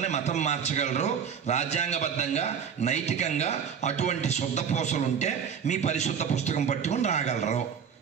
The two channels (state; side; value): quieter; left; 7.2 dB